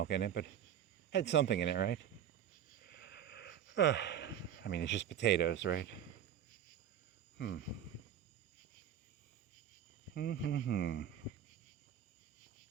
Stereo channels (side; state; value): left; quieter; 9.5 dB